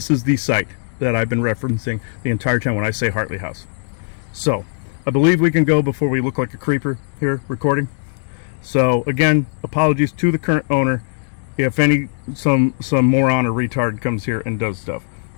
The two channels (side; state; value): right; silent; digital silence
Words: site that I've been referencing the entire time when I say Hartley House. So I believe we can go before we look like a creeper here recording. So again, apologies to the current owner if some moron or retard comes here and does stuff.